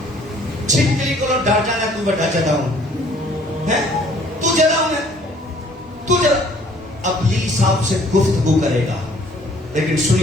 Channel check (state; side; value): normal; both; correlation 0.58